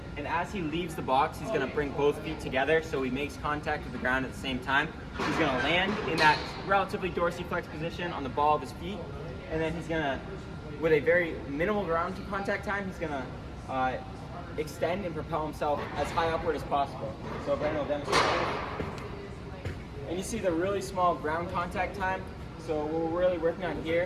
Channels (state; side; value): identical; both; correlation 1.00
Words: and as he leaves the box, he's going to bring both feet together so he makes contact with the ground at the same time. He's going to land in that relatively dorsiflex position on the ball of his feet, and then he's going to, with a very minimal ground contact time, he's going to extend and propel himself as high upward as possible. So Brandon will demonstrate that. And you see the really small ground contact time. So what we're really working on